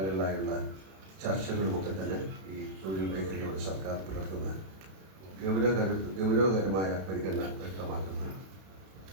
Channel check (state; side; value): late; left; 32 ms